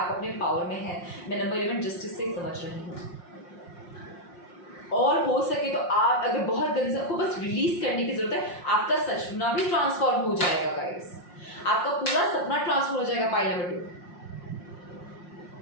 अपने पावर में हैं। मैं नंबर 11 जस्टिस से समझ रही हूँ, और हो सके तो आप अगर बहुत गंदे, आपको बस रिलीज करने की जरूरत है, आपका सपना भी ट्रांसफॉर्म हो जाएगा गाइस। आपका पूरा सपना ट्रांसफॉर्म हो जाएगा पाइल नंबर 2।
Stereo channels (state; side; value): late; right; 5.6 ms